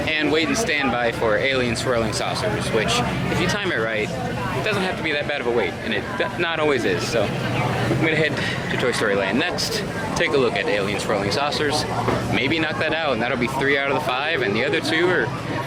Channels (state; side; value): identical; both; correlation 1.00